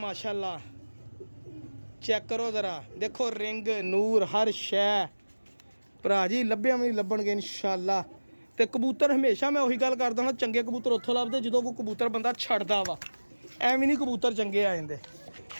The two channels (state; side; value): inverted; both; correlation -1.00